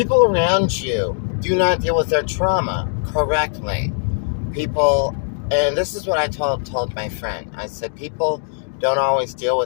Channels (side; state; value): right; silent; 60 dB below the other